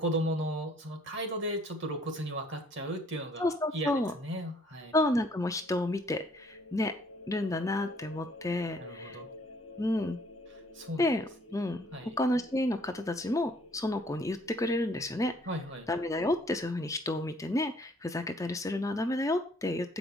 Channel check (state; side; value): normal; both; correlation 0.61